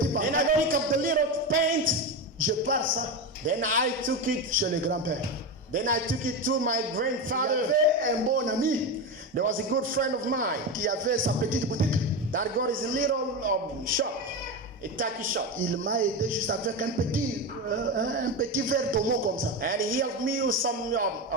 And I pantalon. pick up the little pants. Je pars ça Then I took it. chez le grand-père. Then I took it to my Il y grandfather. avait un bon ami There was a good friend of mine qui avait sa petite boutique. that got his little shop, a tacky shop. Il m'a aidé juste avec un petit verre d'homo comme ça. And he helped me with some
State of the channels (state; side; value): normal; both; correlation 0.17